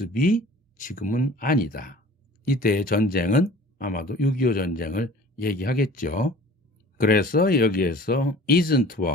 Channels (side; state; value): both; normal; correlation 0.46